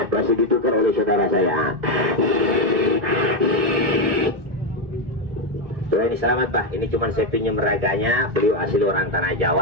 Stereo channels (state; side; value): late; left; 1.5 ms